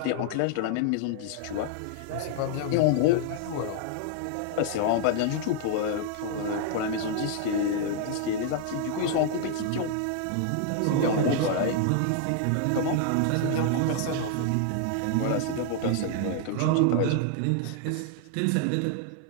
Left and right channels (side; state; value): both; different; correlation 0.00